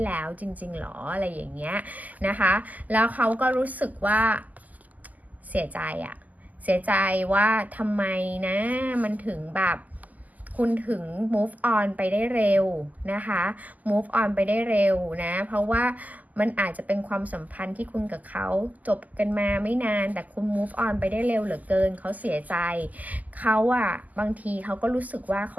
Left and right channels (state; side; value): late; left; 0.079 ms